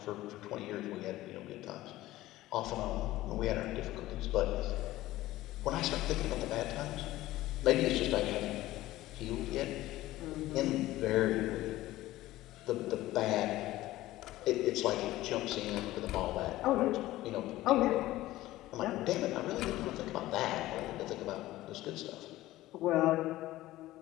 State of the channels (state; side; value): quieter; right; 16.4 dB